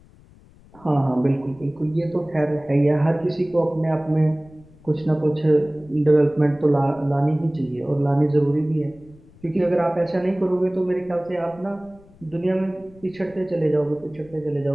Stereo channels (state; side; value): noise; left; rumble, 25 dB below the sound